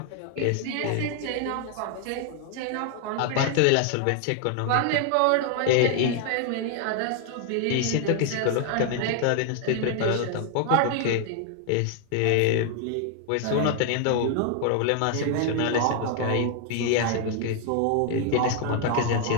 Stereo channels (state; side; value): different; both; correlation 0.00